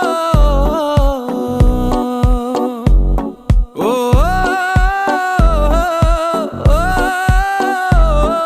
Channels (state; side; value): identical; both; correlation 1.00